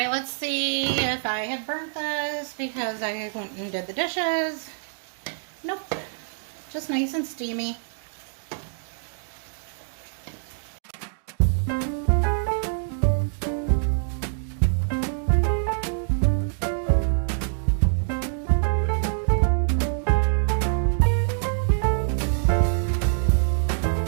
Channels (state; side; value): silent; left; digital silence